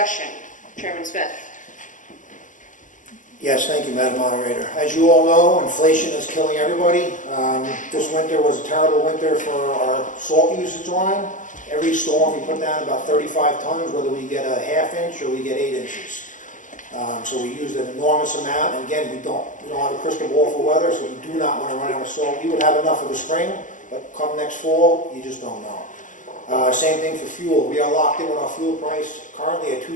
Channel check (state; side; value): late; right; 0.37 ms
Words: Chairman Smith. Yes, thank you, Madam Moderator. As you all know, inflation is killing everybody. This winter was a terrible winter for our salt usage line. Every storm, we put down about 35 tons, whether we get a half inch or we get 8 inches. So we used an enormous amount, and again, we don't have a crystal ball for weather, so we do not want to run out of salt. We would have enough for the spring, but come next fall, you just don't know. Same thing for fuel. We are locked in with our fuel price currently at